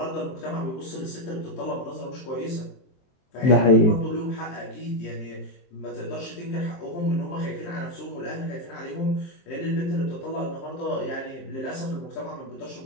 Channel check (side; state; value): right; late; 23 ms